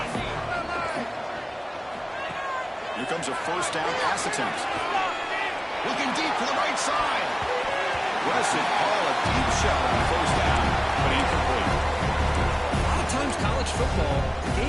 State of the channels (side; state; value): both; identical; correlation 1.00